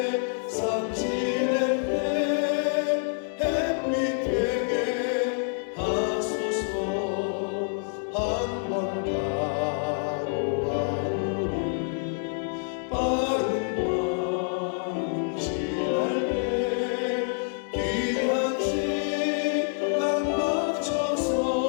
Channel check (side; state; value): right; silent; 60 dB below the other